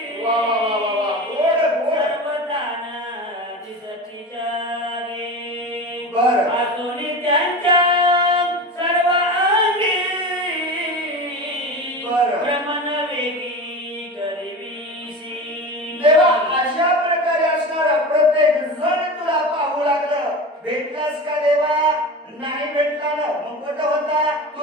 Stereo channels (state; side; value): normal; both; correlation 0.29